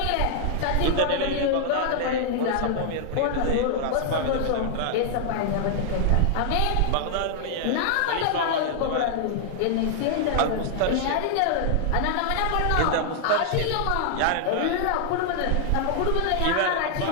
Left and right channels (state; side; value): different; both; correlation 0.00